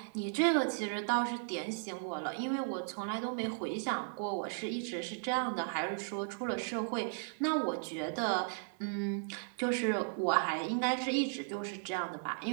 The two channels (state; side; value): silent; left; digital silence